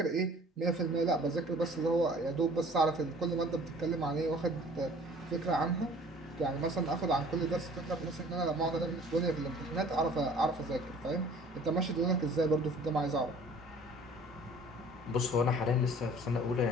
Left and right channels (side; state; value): both; normal; correlation 0.51